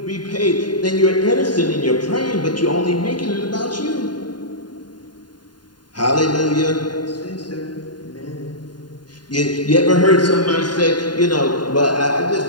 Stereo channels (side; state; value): right; late; 0.70 ms